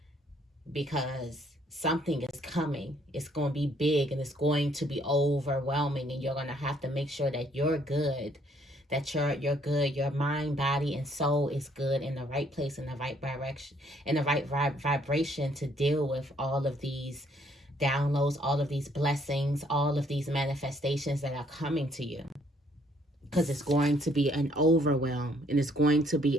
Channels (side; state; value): both; normal; correlation 0.66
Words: because something is coming. It's going to be big and it's going to be overwhelming, and you're going to have to make sure that you're good. That you're good, your mind, body, and soul is good, in the right place, in the right direction, in the right vibration to deal with all of these downloads, all of these blessings, all of these manifestations that are coming to you. Because it's going to be an overwhelm, and it's going to be